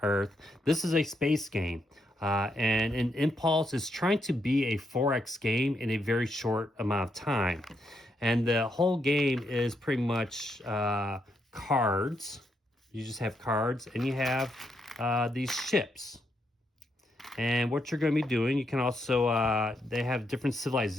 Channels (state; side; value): normal; both; correlation 0.79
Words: Earth. This is a space game. And an Impulse is trying to be a 4X game in a very short amount of time. And the whole game is pretty much cards. You just have cards, and you have these ships. And what you're going to be doing, you can also, they have different